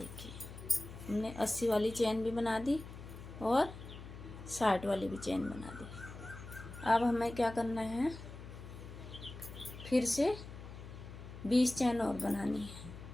हमने 80 वाली चैन भी बना दी और 60 वाली भी चैन बना दी। अब हमें क्या करना है, फिर से 20 चैन और बनानी है।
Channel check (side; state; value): left; noise; hum, 13 dB below the sound